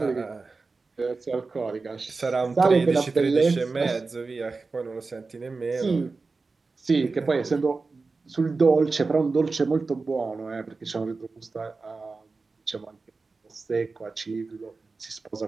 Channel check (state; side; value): quieter; left; 4.0 dB